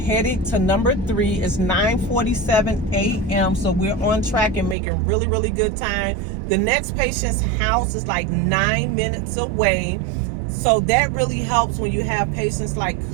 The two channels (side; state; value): left; drops out; at 4.8 s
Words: to number 3. It's 9:47 a.m. So we're on track and making really, really good time. The next patient's house is like 9 minutes away. So that really helps when you have patients like